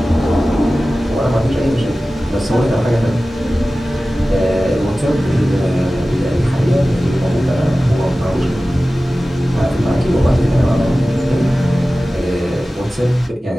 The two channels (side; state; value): both; normal; correlation 0.96